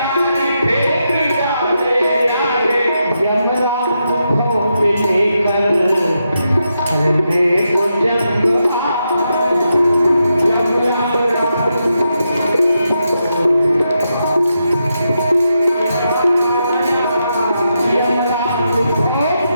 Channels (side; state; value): both; inverted; correlation -0.84